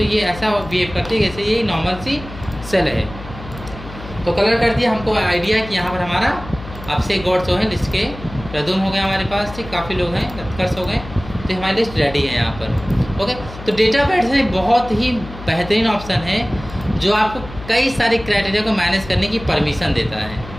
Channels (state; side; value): noise; left; hum, 14 dB below the sound